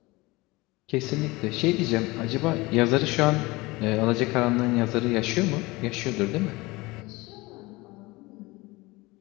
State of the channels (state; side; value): quieter; right; 22.2 dB